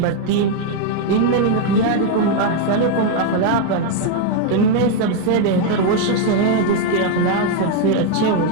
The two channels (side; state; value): both; different; correlation 0.01